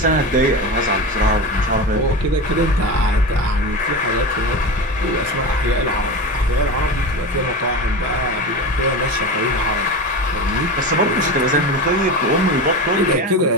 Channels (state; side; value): normal; both; correlation 0.25